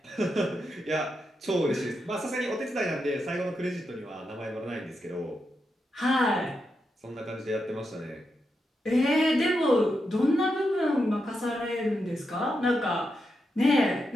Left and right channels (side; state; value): both; normal; correlation 0.85